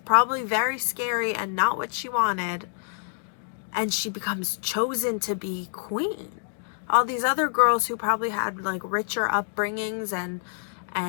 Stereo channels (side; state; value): right; silent; digital silence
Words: very scary and not what she wanted. And she becomes chosen to be queen. All these other girls who probably had like richer upbringings